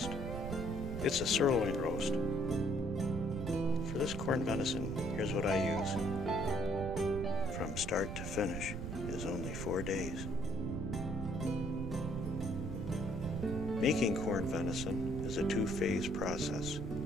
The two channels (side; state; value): right; noise; rumble, 5 dB below the sound